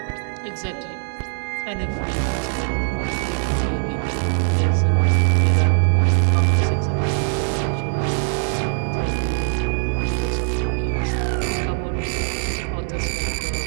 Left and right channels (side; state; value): left; silent; digital silence